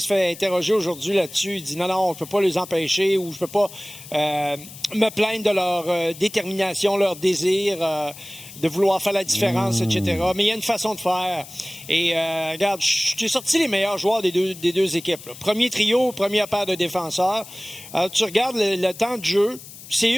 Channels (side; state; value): left; noise; hiss, 16 dB below the sound